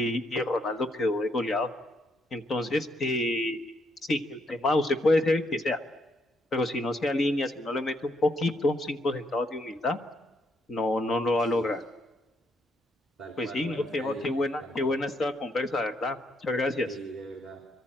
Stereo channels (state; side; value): normal; both; correlation 0.75